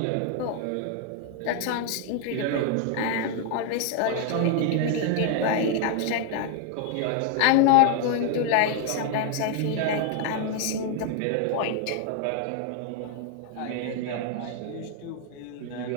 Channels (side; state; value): both; different; correlation 0.00